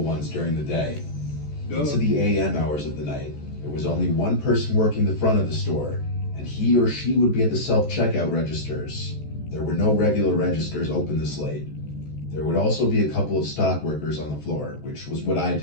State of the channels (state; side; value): late; right; 14 ms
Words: ones during the day. Into the AM hours of the night, there was only one person working the front of the store, and he or she would be at the self-checkout registers. There were no regular registers open this late. There would also be a couple of stock workers on the floor, which was what I